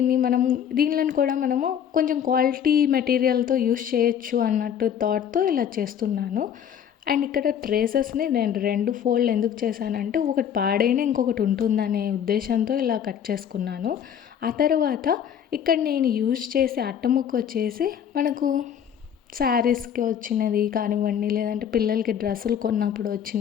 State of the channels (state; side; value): quieter; right; 8.8 dB